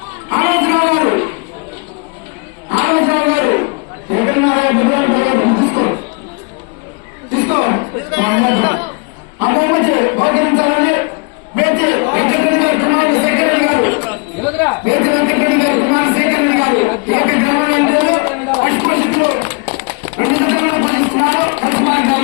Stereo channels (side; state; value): right; quieter; 32.2 dB